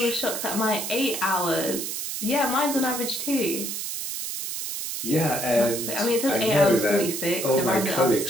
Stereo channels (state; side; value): noise; right; hiss, 4 dB below the sound